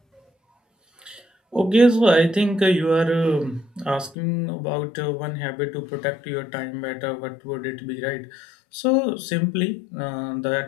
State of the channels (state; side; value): drops out; right; at 4.2 s